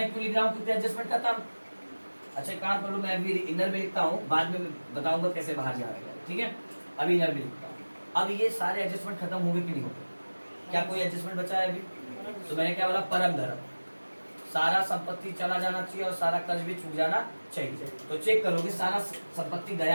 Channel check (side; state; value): both; inverted; correlation -1.00